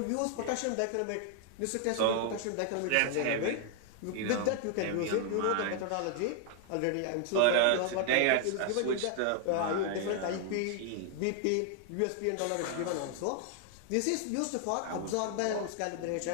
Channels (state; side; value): different; both; correlation 0.00